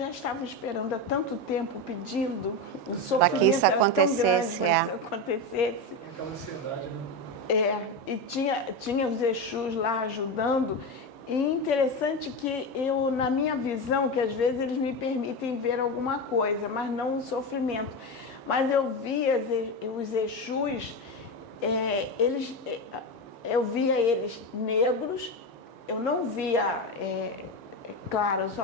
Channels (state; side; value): normal; both; correlation 0.16